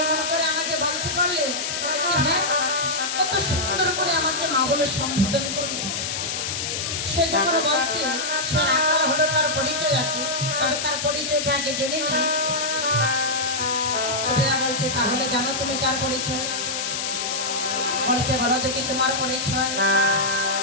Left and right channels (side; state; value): left; noise; hiss, 2 dB below the sound